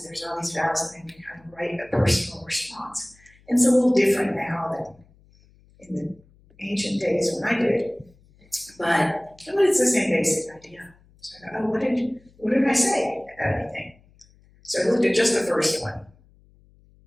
there's all these vows and then we kind of write a personal response. And it's a little different now than in the ancient days when I did it. But it's the same basic idea. So I thought, oh, what did I say about anything? So I looked at just the first one.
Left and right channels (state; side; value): noise; left; hum, 29 dB below the sound